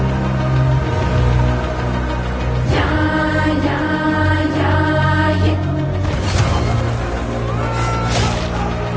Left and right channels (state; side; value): identical; both; correlation 1.00